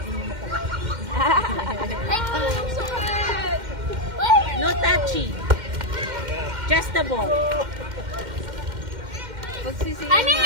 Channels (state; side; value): late; left; 2.1 ms